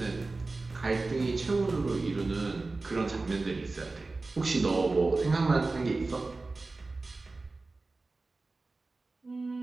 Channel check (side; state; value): left; quieter; 3.5 dB